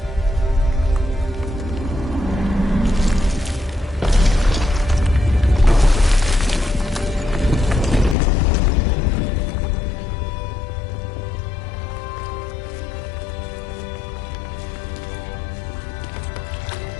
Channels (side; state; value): right; drops out; at 8.2 s